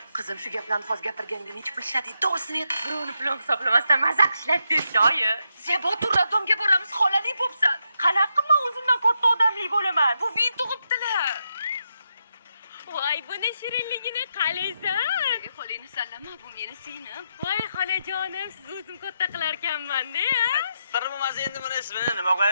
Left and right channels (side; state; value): both; inverted; correlation -0.82